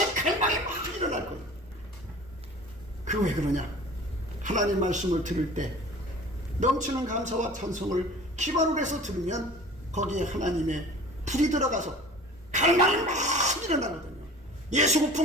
갈망이 막 일어날 거예요. 그 왜 그러냐? 하나님 말씀을 들을 때 넘치는 감사와 찬송을 기반으로 해서 들으면 거기에 하나님의 불이 들어가서 갈망이 막 일어나거든요. 예수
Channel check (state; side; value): normal; both; correlation 0.43